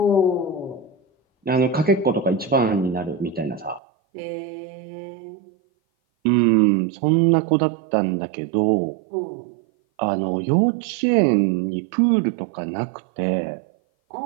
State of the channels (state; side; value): drops out; left; at 3.8 s